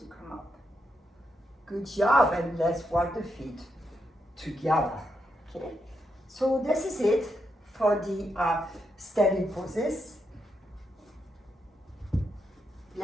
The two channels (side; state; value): both; normal; correlation 0.82